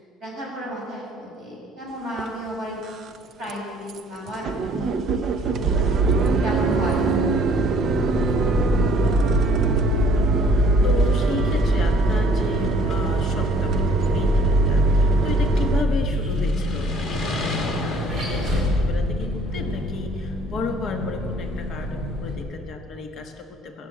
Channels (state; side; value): normal; both; correlation 0.57